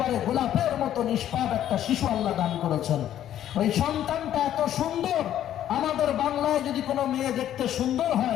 গোলাপের মতো নিষ্পাপ একটা শিশু আল্লাহ দান করেছেন। ওই সন্তানটা এত সুন্দর, আমাদের বাংলায় যদি কোনো মেয়ে দেখতে সুন্দর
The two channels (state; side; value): quieter; right; 11.4 dB